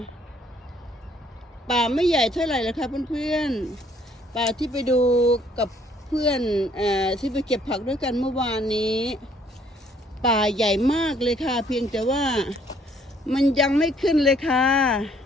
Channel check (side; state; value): both; normal; correlation 0.63